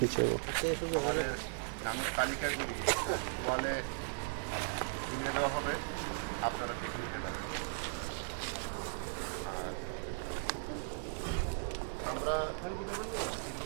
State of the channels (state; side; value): silent; left; digital silence